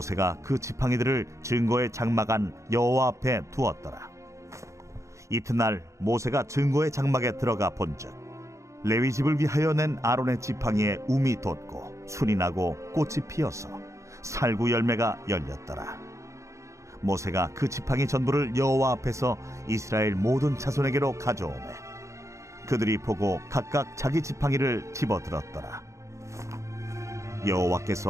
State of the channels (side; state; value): left; late; 0.15 ms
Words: 그 지팡이들을 증거의 장막 안 여호와 앞에 두었더라. 이튿날 모세가 증거의 장막에 들어가 본즉 레위 집을 위하여 낸 아론의 지팡이에 움이 돋고 순이 나고 꽃이 피어서 살구 열매가 열렸더라. 모세가 그 지팡이 전부를 여호와 앞에서 이스라엘 모든 자손에게로 가져오매 그들이 보고 각각 자기 지팡이를 집어들었더라.